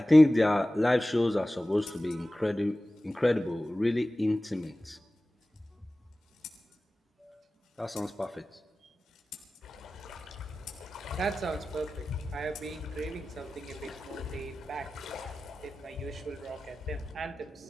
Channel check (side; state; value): both; normal; correlation 0.96